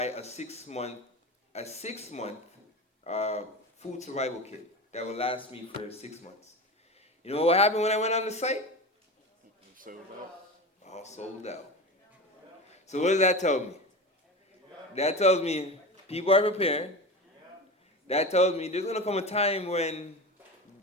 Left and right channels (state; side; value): normal; both; correlation 0.27